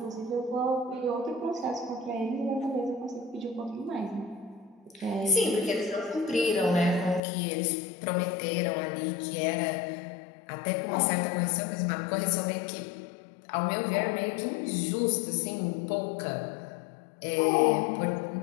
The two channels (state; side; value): drops out; right; at 7.2 s